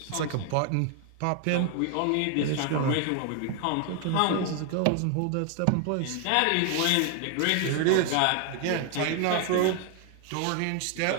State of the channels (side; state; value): both; different; correlation 0.00